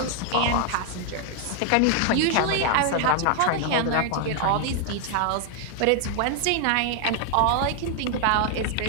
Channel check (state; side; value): different; both; correlation 0.00